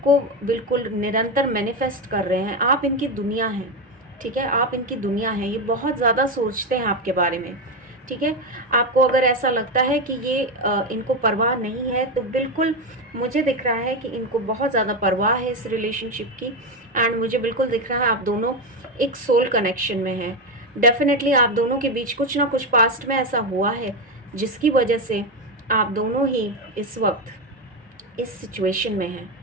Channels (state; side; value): normal; both; correlation 0.11